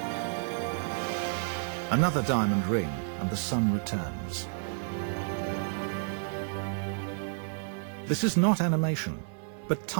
Another diamond ring, and the Sun returns. This is not animation, but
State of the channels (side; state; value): left; silent; digital silence